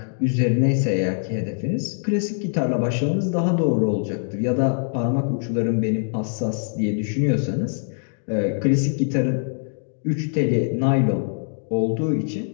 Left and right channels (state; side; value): silent; right; digital silence